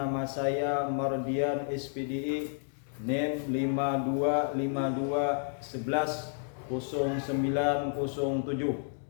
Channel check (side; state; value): right; silent; digital silence